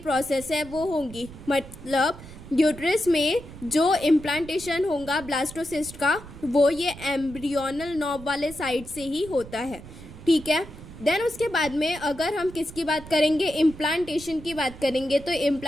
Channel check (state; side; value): noise; right; rumble, 15 dB below the sound